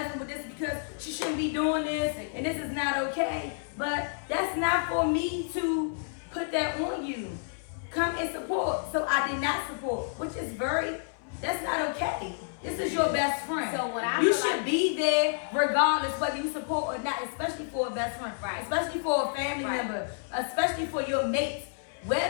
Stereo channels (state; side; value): silent; right; 58 dB below the other